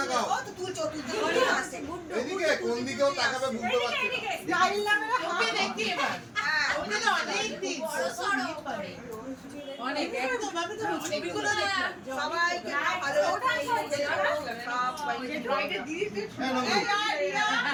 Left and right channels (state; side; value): identical; both; correlation 1.00